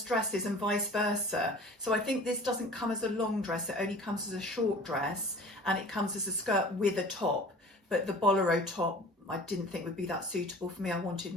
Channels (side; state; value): both; normal; correlation 0.44